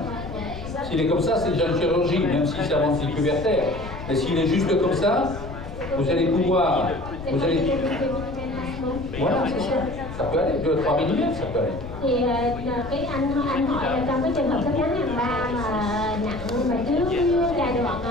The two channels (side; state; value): left; noise; rumble, 11 dB below the sound